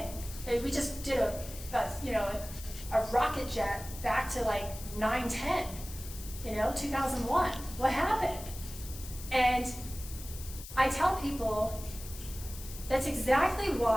We just did a rocket jet back to like 9/10, 2001. What happened? And I tell people that's exactly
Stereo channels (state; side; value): noise; left; hiss, 13 dB below the sound